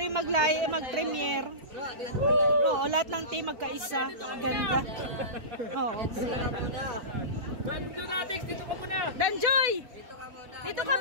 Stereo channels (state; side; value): late; left; 4.6 ms